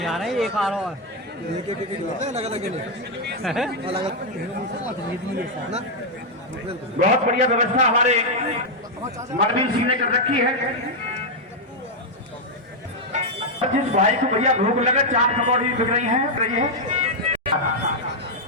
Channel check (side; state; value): both; normal; correlation -0.01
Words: आ रहे हैं, एक आ रहा है। बहुत बढ़िया व्यवस्था हमारे मनवीर सिंह ने कर रखी है। जिस भाई को भैया भूख लगे, 4 पकौड़ी बिक रही है।